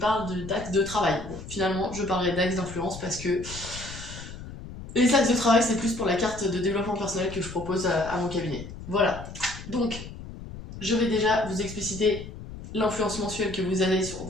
d'axes de travail. Bon, finalement, je parlerai d'axes d'influence parce que les axes de travail, c'est plus pour la carte de développement personnel que je propose à mon cabinet. Voilà, donc je vais déjà vous expliciter l'influence mensuelle que vous avez sur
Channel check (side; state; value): left; noise; rumble, 12 dB below the sound